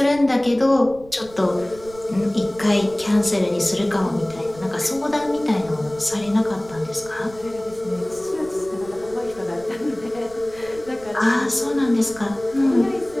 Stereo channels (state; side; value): noise; right; rumble, 20 dB below the sound